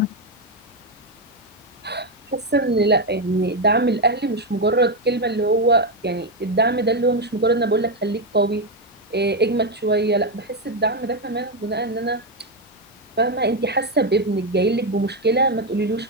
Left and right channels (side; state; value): both; normal; correlation 0.06